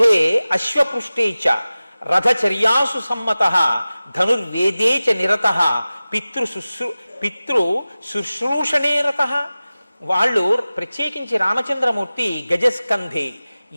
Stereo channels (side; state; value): both; inverted; correlation -0.97